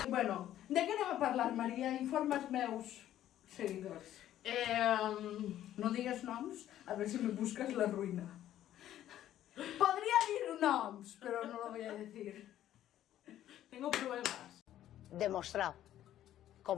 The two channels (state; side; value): quieter; right; 12.2 dB